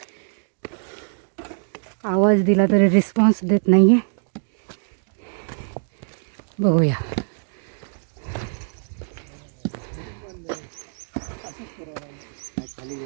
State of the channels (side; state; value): left; silent; digital silence